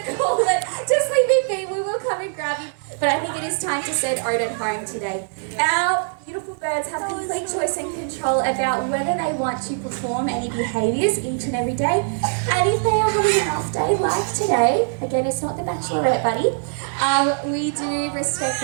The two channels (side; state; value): left; silent; digital silence